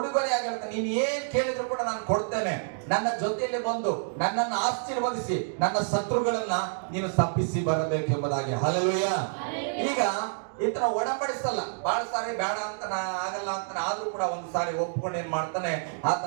ಹೇಳ್ತಾನೆ, ನೀನು ಏನ್ ಕೇಳಿದ್ರು ಕೂಡ ನಾನು ಕೊಡ್ತೇನೆ, ನನ್ನ ಜೊತೆಯಲ್ಲಿ ಬಂದು ನನ್ನನ್ನು ಆಶೀರ್ವದಿಸಿ ನನ್ನ ಶತ್ರುಗಳನ್ನ ನೀನು ಶಪಿಸಿ ಬರಬೇಕು ಎಂಬುದಾಗಿ. ಹಲ್ಲೆಲೂಯಾ. ಈಗ ಈತನ ಒಡಂಬಡಿಸಲ್ಲ, ಬಹಳ ಸಾರಿ ಬೇಡ ಅಂತ ಆಗಲ್ಲ ಅಂತ, ಆದ್ರೂ ಕೂಡ ಒಂದು ಸಾರಿ ಒಪ್ಕೊಂಡು ಏನ್ ಮಾಡ್ತಾನೆ,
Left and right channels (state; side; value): silent; left; digital silence